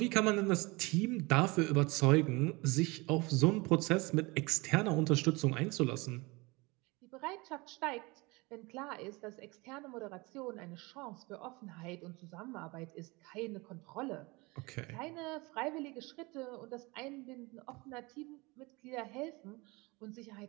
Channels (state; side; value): quieter; left; 25.0 dB